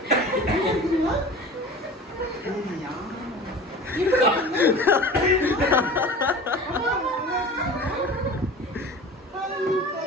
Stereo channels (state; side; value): normal; both; correlation 0.38